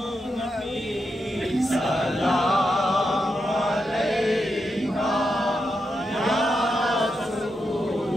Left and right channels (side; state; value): both; normal; correlation 0.85